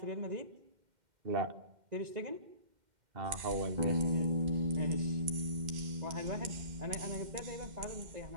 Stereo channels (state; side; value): late; left; 2.1 ms